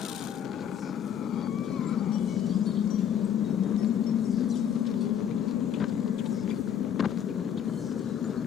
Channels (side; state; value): right; quieter; 9.1 dB